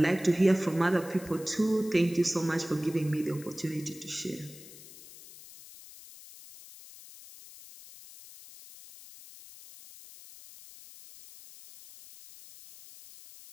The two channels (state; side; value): noise; left; hiss, 18 dB below the sound